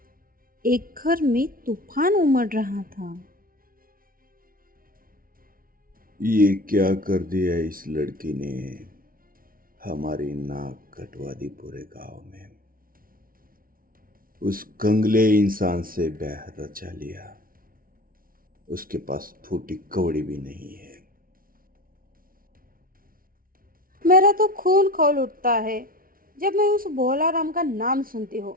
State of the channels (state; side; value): late; left; 0.42 ms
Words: एक घर में तूफान उमड़ रहा था। ये क्या कर दिया इस लड़की ने। हमारी नाक कटवा दी पूरे गांव में। उस कंगले इंसान से ब्याह रचा लिया। उसके पास फूटी कौड़ी भी नहीं है। मेरा तो खून खौल उठता है जब मैं उस भोला राम का नाम सुनती हूँ।